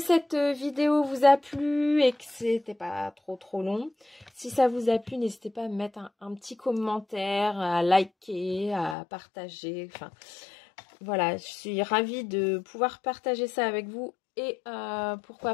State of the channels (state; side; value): drops out; right; at 9.0 s